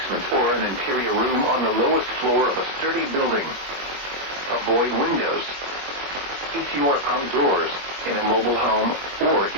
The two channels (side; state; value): left; late; 22 ms